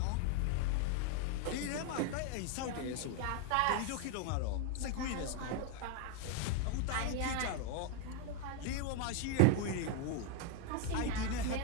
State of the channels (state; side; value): different; both; correlation 0.01